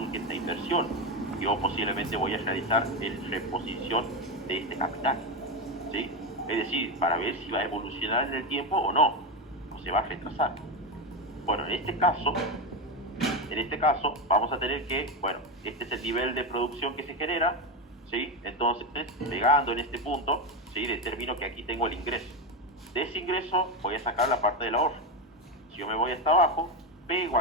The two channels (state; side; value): normal; both; correlation 0.13